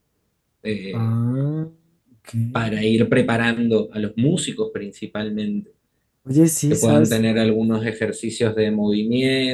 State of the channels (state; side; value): identical; both; correlation 1.00